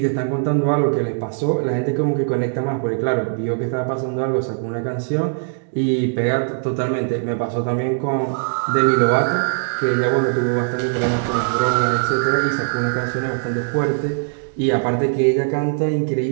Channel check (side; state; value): left; silent; digital silence